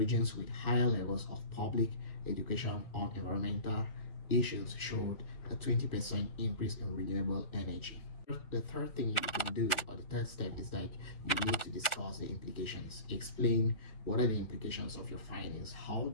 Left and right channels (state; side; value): late; right; 1.4 ms